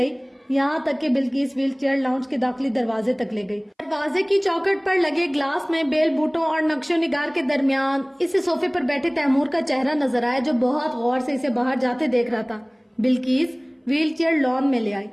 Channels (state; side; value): identical; both; correlation 1.00